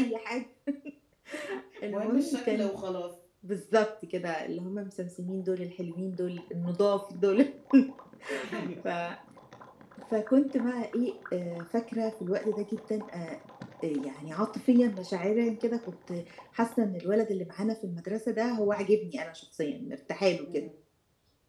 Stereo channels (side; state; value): both; identical; correlation 1.00